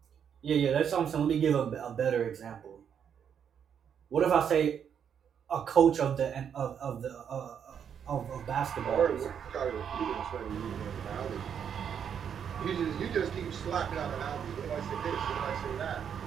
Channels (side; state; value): left; quieter; 8.0 dB